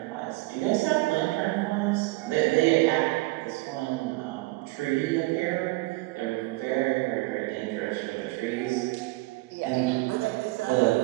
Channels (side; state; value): left; quieter; 21.5 dB